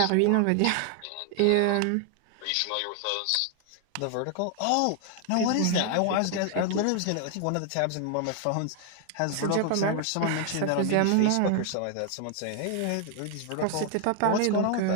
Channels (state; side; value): different; both; correlation 0.00